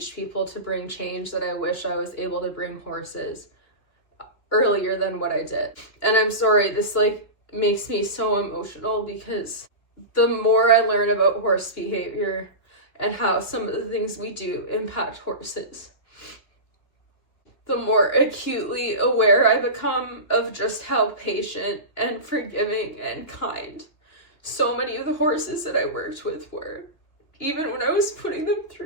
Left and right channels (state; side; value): late; right; 2.9 ms